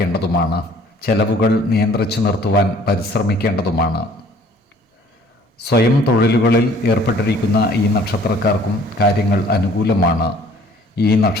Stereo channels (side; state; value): both; normal; correlation 0.55